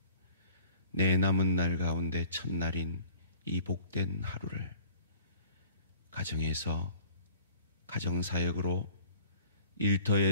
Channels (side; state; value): both; inverted; correlation -0.50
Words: 내 남은 날 가운데 첫날인 이 복된 하루를 가정에서 가정사역으로,